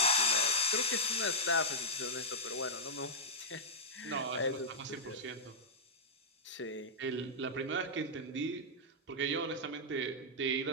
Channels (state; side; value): normal; both; correlation -0.05